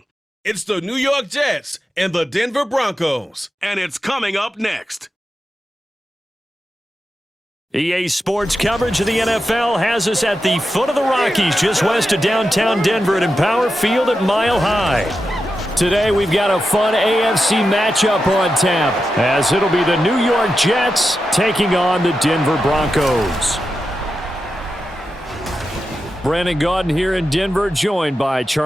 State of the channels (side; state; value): both; normal; correlation 0.89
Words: It's the New York Jets and the Denver Broncos. And it's coming up next. EA Sports coverage of the NFL has us at the foot of the Rockies, just west of downtown Denver at Empower Field at Mile High. Today we've got a fun AFC matchup on tap, as it'll be the New York Jets taking on the Denver Broncos. Brandon Gaudin here in Denver, joined by